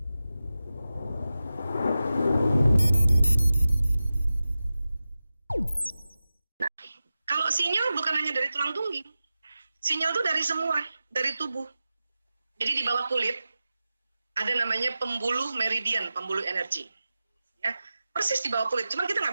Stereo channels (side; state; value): both; inverted; correlation -0.94